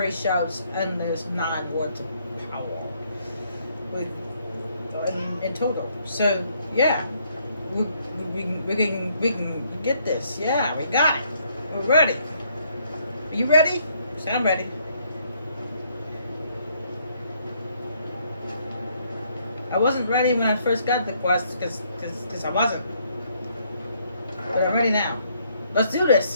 shouts and there's 9 words of power in total. So yeah, we can get this. Yeah, we got it. We're ready. Are you ready? I'm ready. I wasn't ready when I first got the quest because I wasn't. But I'm ready now. Let's do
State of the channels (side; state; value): both; inverted; correlation -0.69